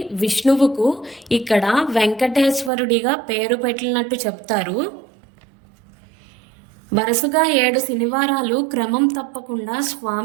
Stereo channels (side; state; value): left; drops out; at 2.7 s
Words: విష్ణువుకు ఇక్కడ వెంకటేశ్వరుడిగా పేరు పెట్టినట్టు చెప్తారు. వరుసగా 7 శనివారాలు క్రమం తప్పకుండా